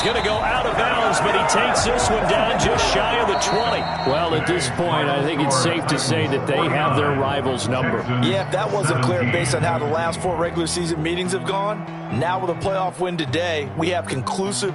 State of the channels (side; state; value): both; identical; correlation 1.00